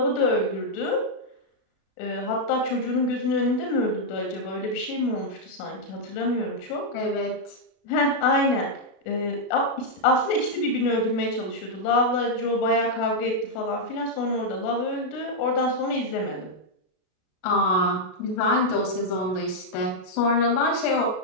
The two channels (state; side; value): late; right; 33 ms